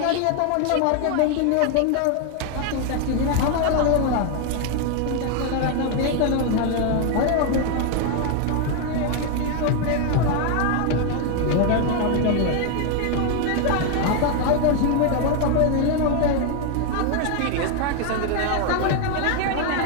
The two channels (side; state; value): both; different; correlation 0.01